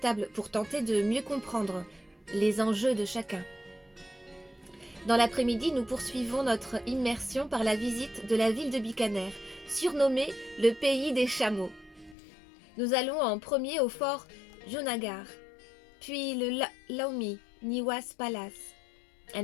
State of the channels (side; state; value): right; drops out; at 12.2 s